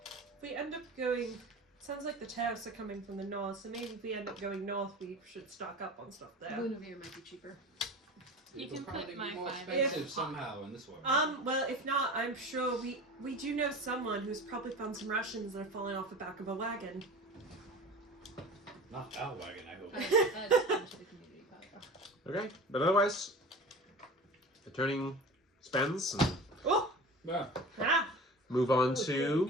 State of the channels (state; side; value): normal; both; correlation 0.35